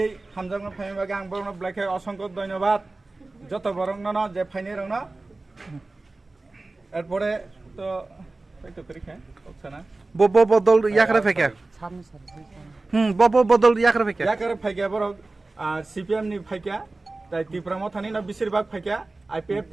হামজাগন ফাইমানি বাগै আং বড় ব্লাগাই অসংখ্য ধন্যবাদ যত বরং ন যে ফাইনি রং এরপরে তো তো পরীক্ষা হচ্ছে না বব বদল ইয়াকরে ফেকে বব বদল ইয়াকরে ফেকে ইয়াকরে ফাইকা বড় সিপিএম নি ফাইকা তাই ত্রিপুরা মথানি না বেশিরভাগ ফাইকা আইপিএফ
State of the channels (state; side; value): quieter; left; 3.2 dB